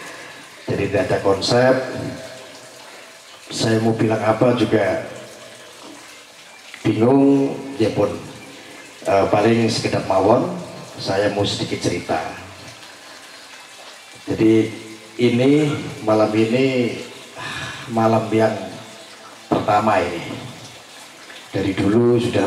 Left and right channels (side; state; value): both; identical; correlation 1.00